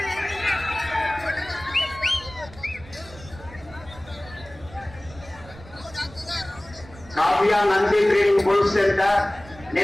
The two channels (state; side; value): noise; right; rumble, 19 dB below the sound